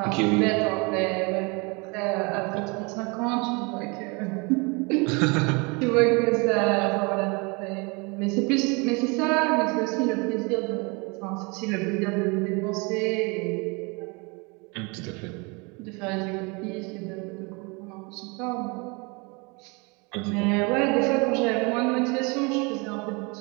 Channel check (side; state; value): left; quieter; 29.3 dB